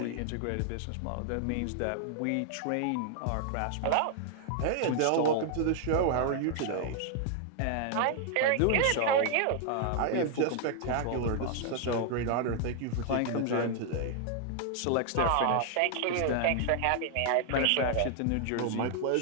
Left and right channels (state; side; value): different; both; correlation 0.00